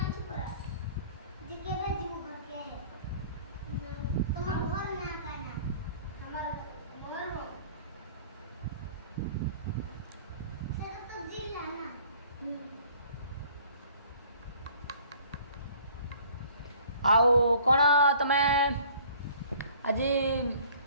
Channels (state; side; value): inverted; both; correlation -0.53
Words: आओ कौन तमें आज